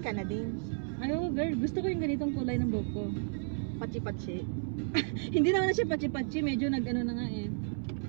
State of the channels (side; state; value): left; silent; 56 dB below the other